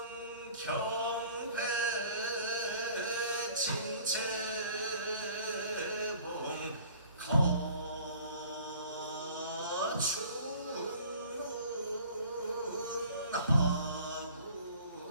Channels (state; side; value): inverted; both; correlation -0.49